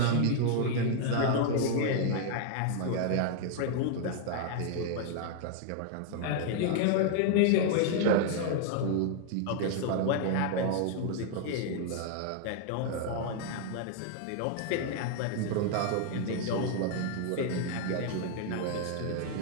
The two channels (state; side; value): different; both; correlation 0.00